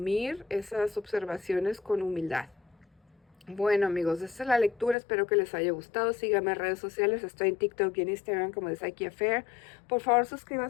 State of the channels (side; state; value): right; drops out; at 5.0 s